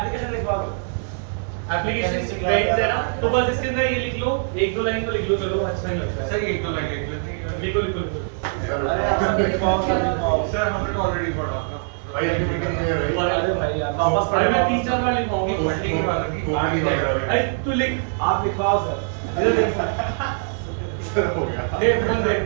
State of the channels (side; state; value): left; silent; digital silence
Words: लिखवा दो। एप्लीकेशन पेज है ना, तो बस इसके अंदर ये लिख लो, एक दो लाइन तो लिख लो, चलो अच्छा नहीं लगता है। सर एक तो लगे लेते हैं। लिखो लिखो लिखो। अरे आप सब लिखवाओ, सब लिखवाओ। सर हमने तो ऑलरेडी पढ़ा था। भाई अभी मीटिंग नहीं है भाई। अरे भाई यार वापस अरे पढ़े मैं 3-4 बार लिखवाऊंगी। पढ़ने की बात की आगे जा रहा है। अरे तू लिख। आप लिखवाओ सर। इधर लिख। सर हो गया दे फोन दे।